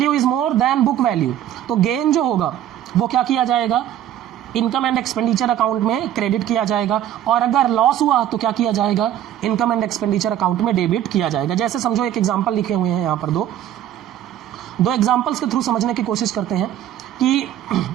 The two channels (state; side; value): quieter; left; 11.5 dB